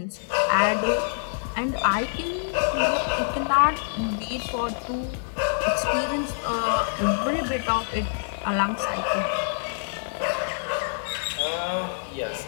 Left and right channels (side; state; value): right; silent; digital silence